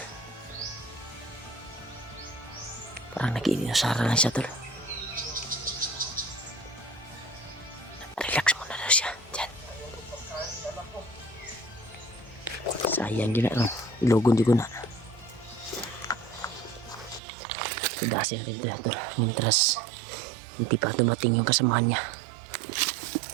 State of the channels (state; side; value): drops out; left; at 17.2 s